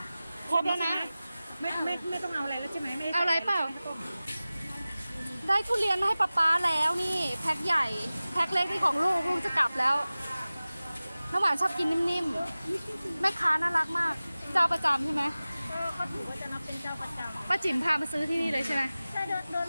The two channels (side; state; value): both; inverted; correlation -0.97